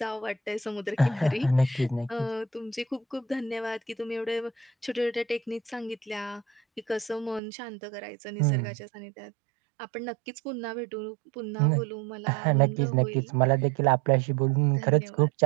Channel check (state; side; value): drops out; left; at 7.4 s